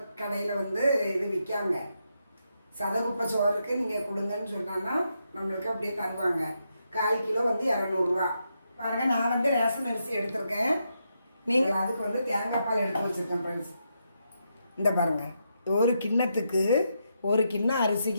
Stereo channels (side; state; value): both; inverted; correlation -0.82